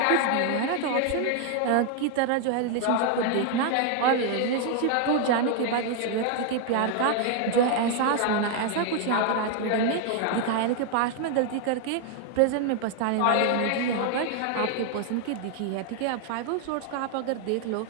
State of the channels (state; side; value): different; both; correlation 0.00